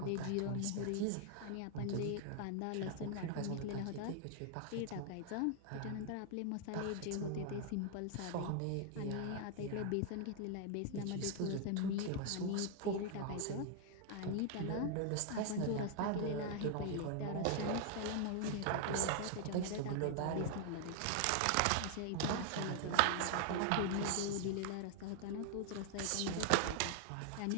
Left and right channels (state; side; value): different; both; correlation 0.00